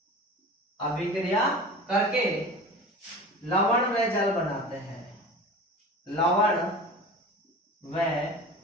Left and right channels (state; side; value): normal; both; correlation 0.35